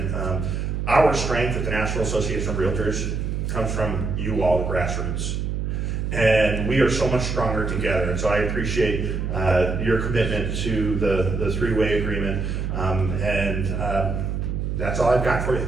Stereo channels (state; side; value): noise; right; hum, 2 dB below the sound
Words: our strength at the National Association of Realtors comes from you all, the grassroots. And we are so much stronger together. And so I appreciate your commitment to the three-way agreement. And that's all I've got for you.